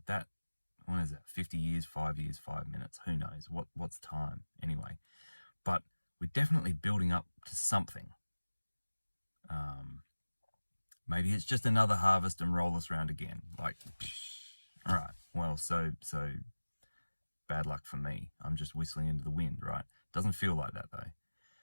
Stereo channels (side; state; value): both; inverted; correlation -1.00